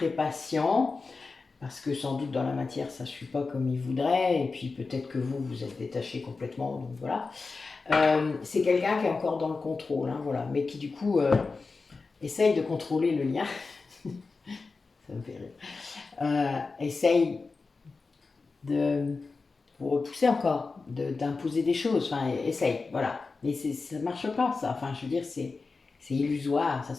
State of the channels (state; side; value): quieter; right; 4.2 dB